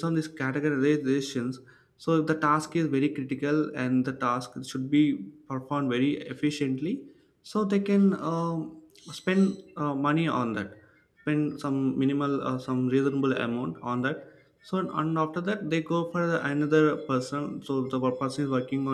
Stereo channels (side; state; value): both; identical; correlation 1.00